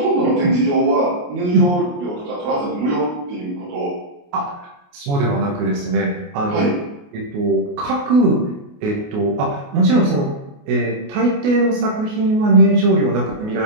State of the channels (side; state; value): left; late; 28 ms